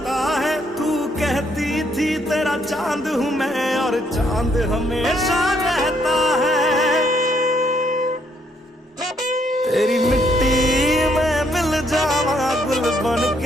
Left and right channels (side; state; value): both; normal; correlation 0.71